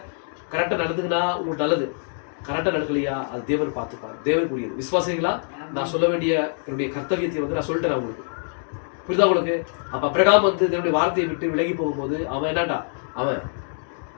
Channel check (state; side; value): silent; right; 62 dB below the other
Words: கரெக்டா நடந்துங்கன்னா உங்களுக்கு நல்லது, கரெக்டா நடக்கலையா அது தேவன் பார்த்துப்பார், தேவனுக்குரியது. விசுவாசிங்களா? நான் சொல்ல வேண்டிய என்னுடைய கர்த்தவியத்தை வந்து நான் சொல்லிட்டேன் உங்களுக்கு. புரியுதா உங்களுக்கு? அப்ப அப்ரகாம் வந்து தேவனுடைய வார்த்தையை விட்டு விலகி போகும்போது அவன் என்னடா, அவன்